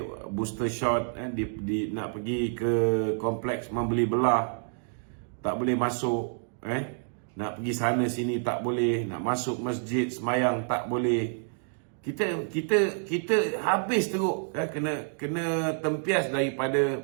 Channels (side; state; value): left; silent; digital silence